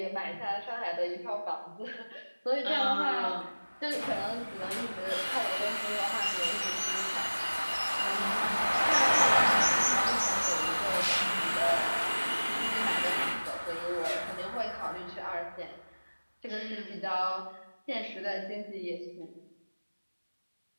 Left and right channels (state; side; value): inverted; both; correlation -1.00